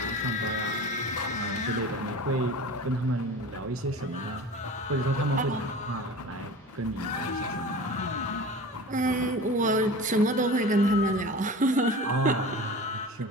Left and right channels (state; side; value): normal; both; correlation 0.35